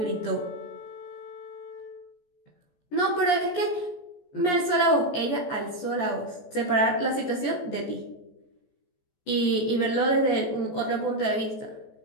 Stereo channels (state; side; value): late; right; 14 ms